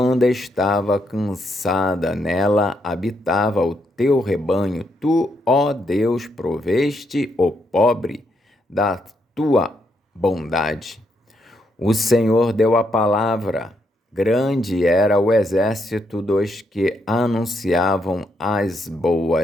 estava cansada. Nela habitava o teu rebanho. Tu, ó Deus, proveste o pobre da tua bondade. O Senhor deu a palavra. Grande era o exército dos que anunciavam as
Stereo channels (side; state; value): both; normal; correlation 0.78